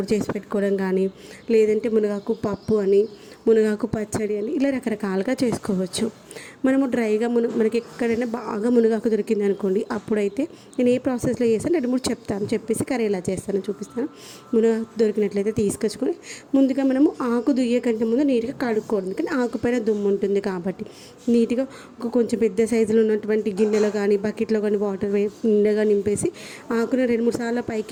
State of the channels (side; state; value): both; identical; correlation 1.00